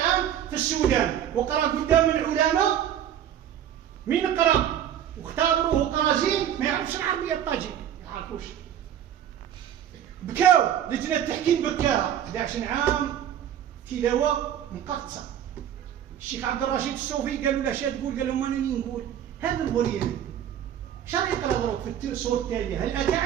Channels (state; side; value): quieter; left; 10.3 dB